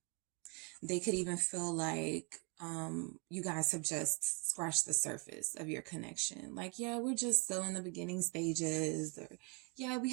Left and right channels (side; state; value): left; quieter; 33.6 dB